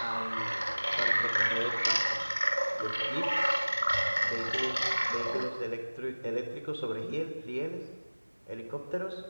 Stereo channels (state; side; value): inverted; both; correlation -1.00